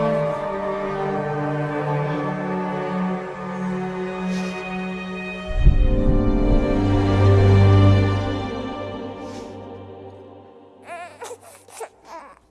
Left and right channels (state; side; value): identical; both; correlation 1.00